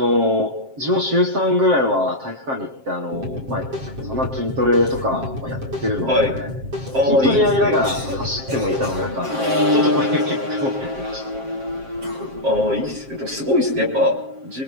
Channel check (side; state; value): left; late; 7.5 ms